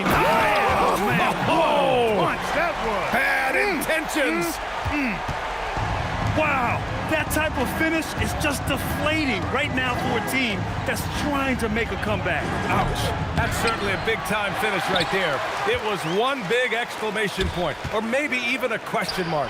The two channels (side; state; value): both; identical; correlation 1.00